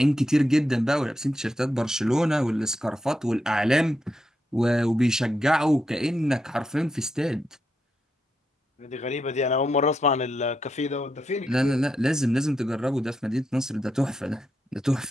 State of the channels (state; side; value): normal; both; correlation 0.83